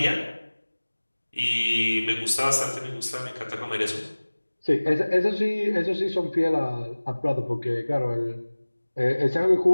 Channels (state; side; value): inverted; both; correlation -1.00